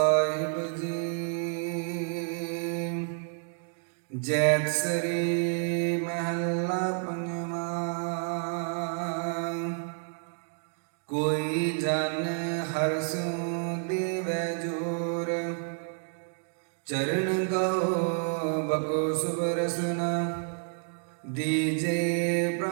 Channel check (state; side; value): silent; left; 58 dB below the other